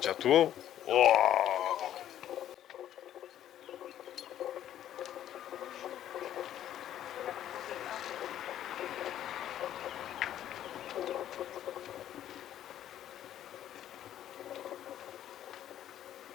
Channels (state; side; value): quieter; right; 11.5 dB